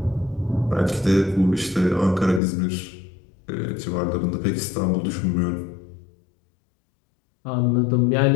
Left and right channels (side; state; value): right; drops out; at 2.4 s